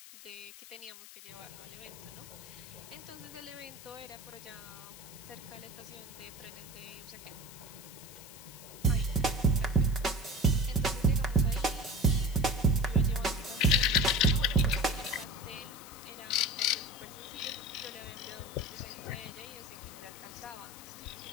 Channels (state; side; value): noise; left; hiss, 16 dB below the sound